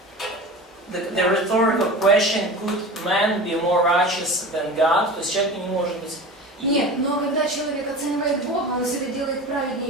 the rhetorical question: could man be more righteous than God? То есть человек не может быть. Нет, но когда человек оценивает Бога, он себя делает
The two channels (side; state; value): both; normal; correlation 0.34